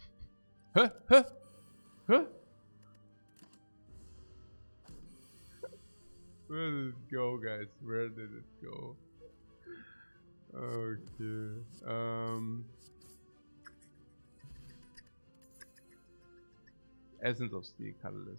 Huh? Huh? Huh? Where did it go, guys? Where did it go? Okay. Essence of Steel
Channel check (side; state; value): both; inverted; correlation -1.00